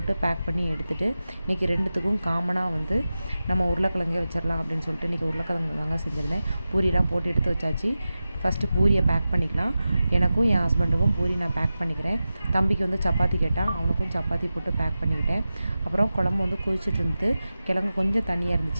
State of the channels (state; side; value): inverted; both; correlation -0.94